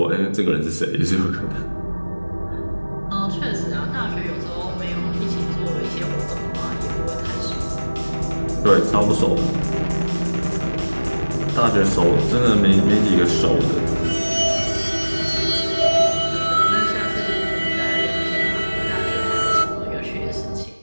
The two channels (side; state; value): both; inverted; correlation -1.00